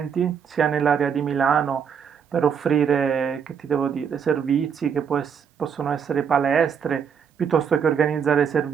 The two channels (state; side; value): quieter; left; 7.2 dB